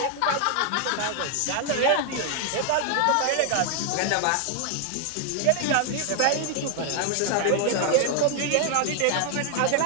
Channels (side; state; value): both; different; correlation 0.00